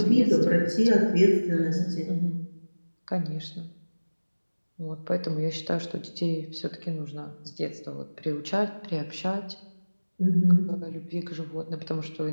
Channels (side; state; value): both; inverted; correlation -1.00